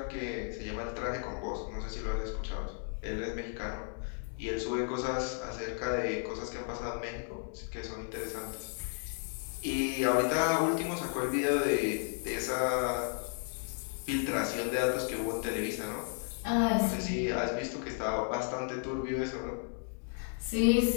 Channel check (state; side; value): silent; right; 55 dB below the other